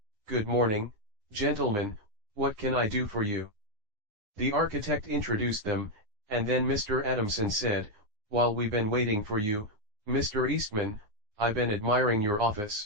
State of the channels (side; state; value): left; late; 9.6 ms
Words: "Good morning, gentlemen, what can I do for you?" The architect introduced them, and then Mr. Adamson said, "While we've been waiting for you, Mr. Eastman, I've been admiring your